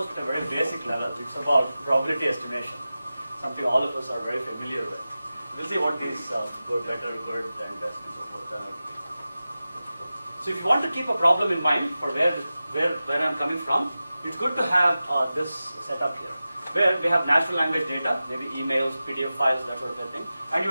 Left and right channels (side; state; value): both; inverted; correlation -0.94